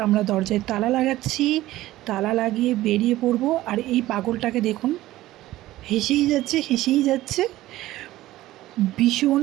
আমরা দরজায় তালা লাগাচ্ছি। তালা লাগিয়ে বেরিয়ে পড়ব। আর এই পাগলটাকে দেখুন, হেসেই যাচ্ছে, হেসেই যাচ্ছে। ভীষণ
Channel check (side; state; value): left; quieter; 16.0 dB